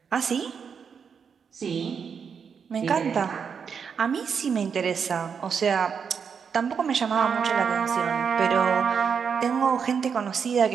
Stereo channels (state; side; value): quieter; left; 6.6 dB